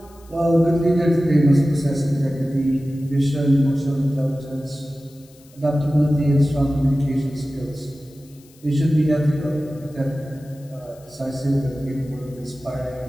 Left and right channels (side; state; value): left; noise; hiss, 28 dB below the sound